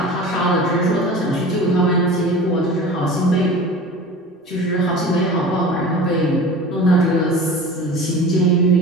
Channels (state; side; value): normal; both; correlation 0.37